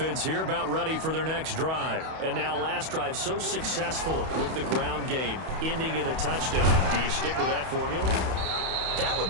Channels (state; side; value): late; left; 31 ms